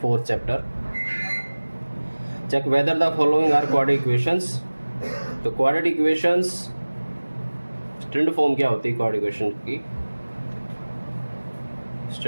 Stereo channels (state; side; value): inverted; both; correlation -1.00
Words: chapter. Check whether the following are quadratic equations. तो क्वाड्रेटिक इक्वेशंस स्टैंडर्ड फॉर्म क्या होती है क्वाड्रेटिक इक्वेशन की?